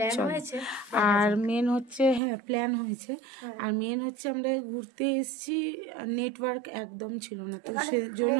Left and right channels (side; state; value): left; drops out; at 2.2 s